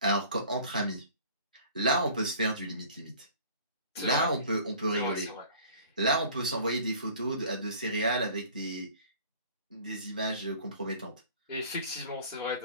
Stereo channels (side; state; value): both; inverted; correlation -0.48